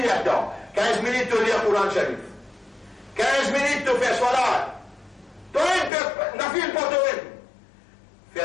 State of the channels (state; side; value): drops out; right; at 5.9 s